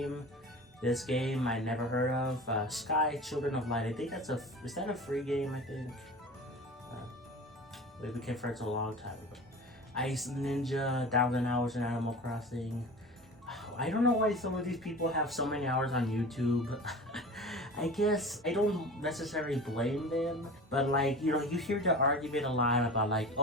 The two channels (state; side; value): normal; both; correlation 0.35